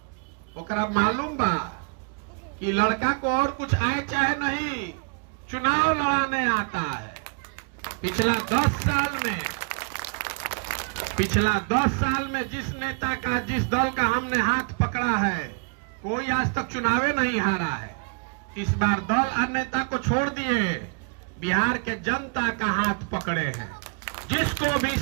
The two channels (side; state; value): left; quieter; 36.4 dB